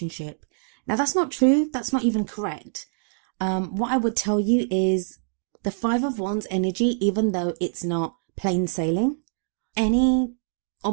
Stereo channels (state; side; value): silent; left; digital silence